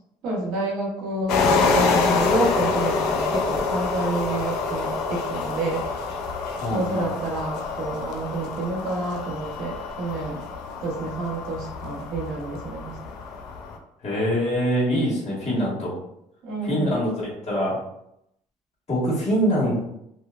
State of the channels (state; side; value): normal; both; correlation 0.49